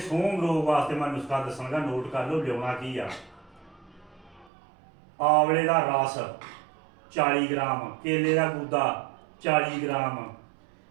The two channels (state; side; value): drops out; left; at 4.5 s